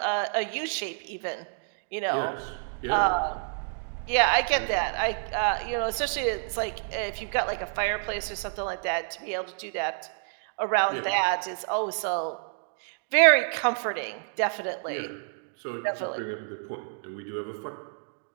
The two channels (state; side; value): silent; left; digital silence